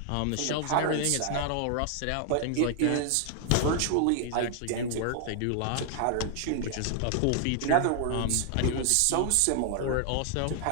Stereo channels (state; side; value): different; both; correlation 0.00